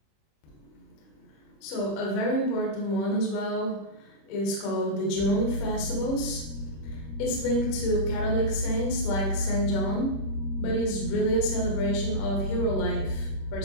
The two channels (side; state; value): right; late; 26 ms